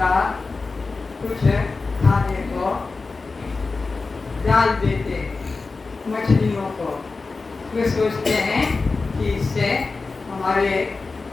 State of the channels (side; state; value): right; quieter; 4.0 dB